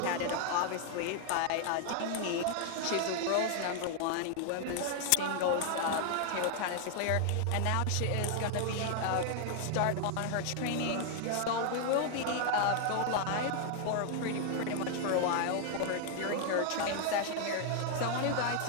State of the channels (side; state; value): both; different; correlation 0.00